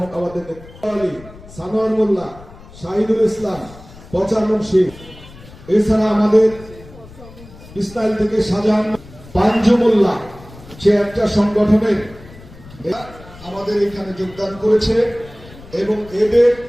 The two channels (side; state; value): left; noise; rumble, 20 dB below the sound